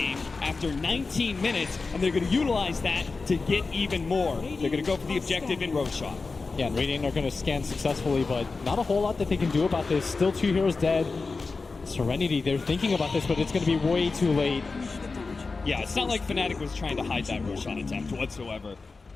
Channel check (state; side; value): quieter; right; 4.1 dB